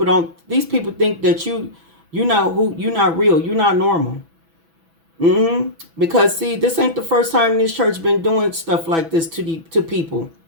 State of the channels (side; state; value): left; late; 6.1 ms